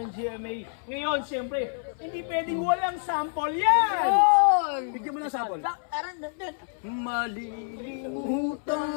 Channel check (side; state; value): right; silent; 60 dB below the other